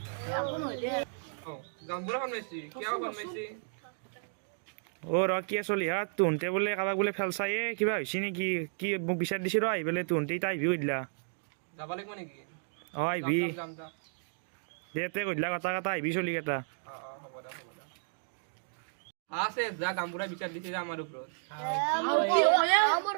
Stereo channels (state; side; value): silent; left; digital silence